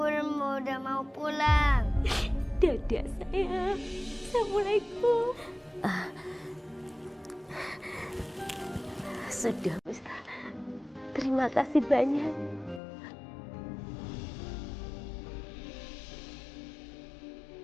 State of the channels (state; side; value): drops out; right; at 12.8 s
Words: udah mau pulang. Dadah, sayang. Assalamualaikum. Sudah, Ustaz. Terima kasih banyak.